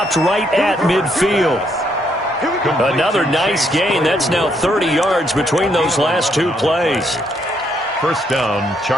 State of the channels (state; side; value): normal; both; correlation 0.73